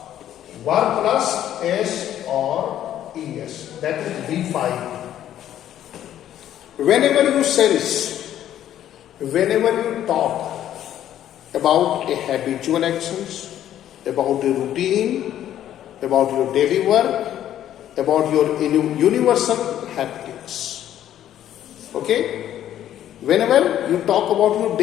Verb plus S or ES. That is V5. Whenever you sense, whenever you talk about a habitual actions, about a routine, about your daily work, about your universal happenings. Okay? Whenever you talk about your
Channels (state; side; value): quieter; right; 11.4 dB